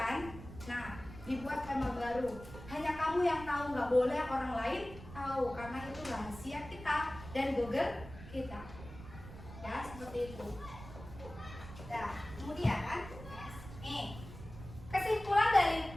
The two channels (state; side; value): noise; right; rumble, 14 dB below the sound